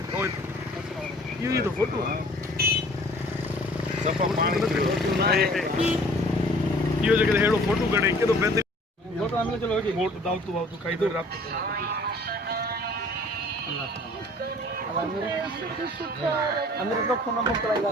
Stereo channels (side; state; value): both; normal; correlation 0.52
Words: ये तो फोटो सफा पानी यो जगह हेड़ो फोटो कढे के तो बेहतर फोटो आने चलो वोट दाव तू काई दो रात अंदर तो फोन मोकलाइला